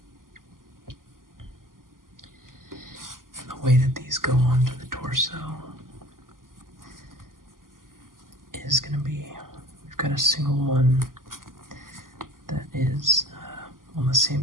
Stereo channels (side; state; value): left; late; 0.91 ms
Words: And the way that these go onto the torso is going to be, we've got a single one that is on the